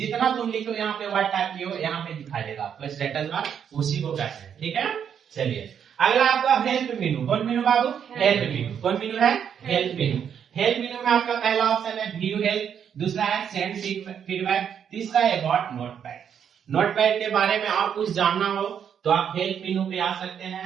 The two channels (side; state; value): left; quieter; 8.2 dB